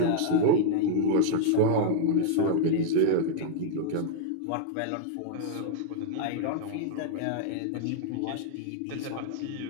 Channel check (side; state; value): both; different; correlation -0.01